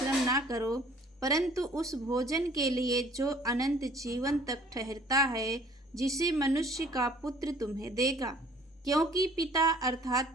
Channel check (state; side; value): normal; both; correlation 0.54